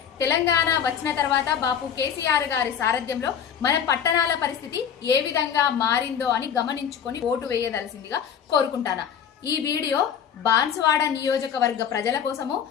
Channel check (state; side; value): quieter; right; 8.2 dB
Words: తెలంగాణ వచ్చిన తర్వాత బాపు కేసీఆర్ గారి సారథ్యంలో మన పట్టణాల పరిస్థితి ఏ విధంగా మారిందో అని గమనించుకొని ఓటు వేయదలసిందిగా కోరుకుంటాను. ఈ వీడియో బాన్సువాడ నియోజకవర్గ ప్రజల కోసము